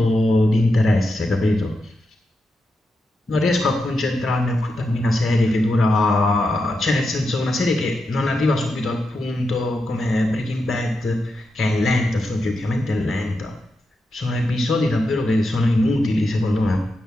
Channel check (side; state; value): both; normal; correlation 0.87